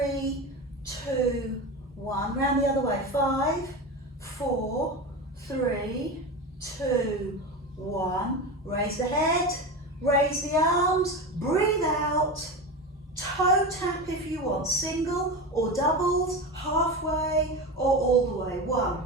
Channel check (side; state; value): both; normal; correlation 0.23